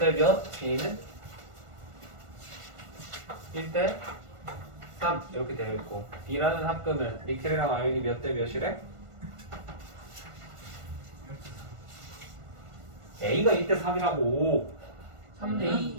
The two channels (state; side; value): late; left; 1.5 ms